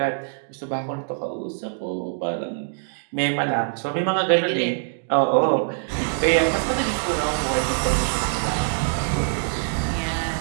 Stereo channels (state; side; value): silent; left; digital silence